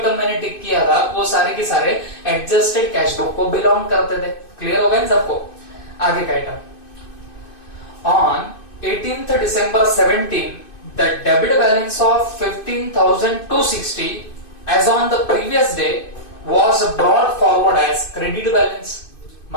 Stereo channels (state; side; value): late; right; 2.5 ms